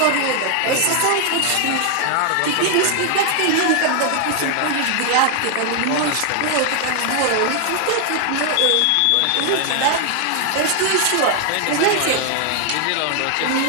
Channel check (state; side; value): different; both; correlation 0.00